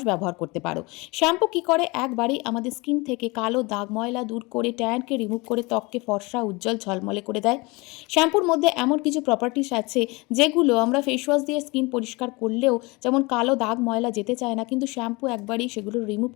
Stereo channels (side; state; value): right; quieter; 25.3 dB